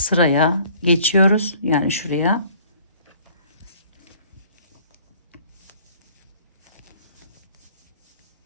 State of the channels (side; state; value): both; inverted; correlation -0.55